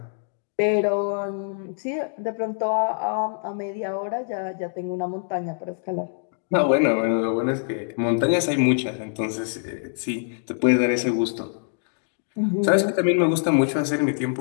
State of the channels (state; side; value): silent; right; digital silence